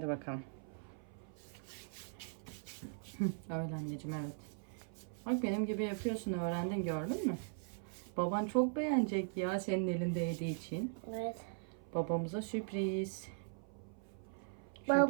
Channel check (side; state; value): left; silent; 51 dB below the other